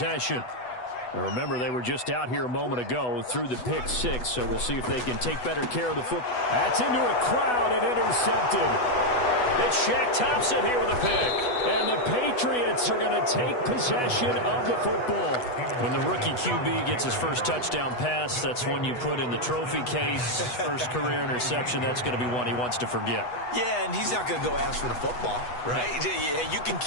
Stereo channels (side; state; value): right; late; 8.1 ms